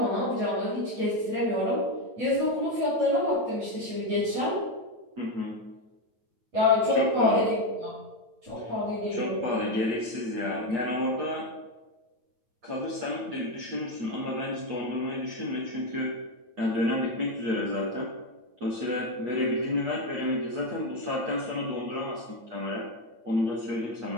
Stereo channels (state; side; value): late; left; 9.0 ms